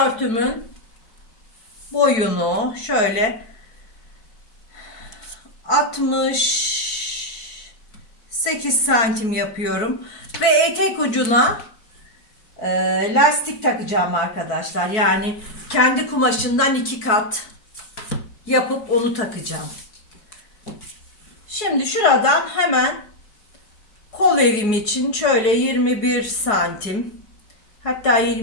boyunu şöyle 68 santim yapıyorum. Ve etek ucuna lastik takacağım arkadaşlar. Yani kendi kumaşından 2 kat yapıp onu takacağım. Şimdi şuradan hemen kol evim için şöyle 21 santim, hatta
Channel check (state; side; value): late; right; 4.6 ms